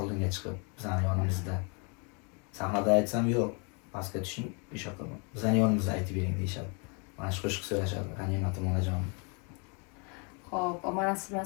chiqib bizning yonimizda. Sahnada aytsam yo'q, pastga tushing, o'sha qilib. Bizning yonimizda aytib bering deyshadi. Mana shu qo'shiq so'rashadi G'animatim onajon. Xo'p, mana siz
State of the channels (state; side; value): quieter; right; 35.3 dB